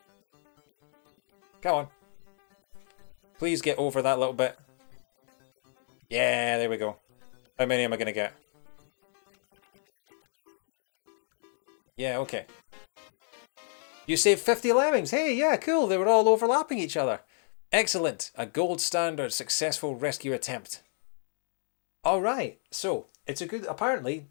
Come on. Please get over that little bit. Yeah, there we go. How many am I going to get? Yeah, okay. You saved 50 lemmings. Hey, yeah, cool. They were all overlapping each other. Excellent. A gold standard successful rescue attempt. Alright, so it's a good... Apparently,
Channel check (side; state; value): right; silent; 56 dB below the other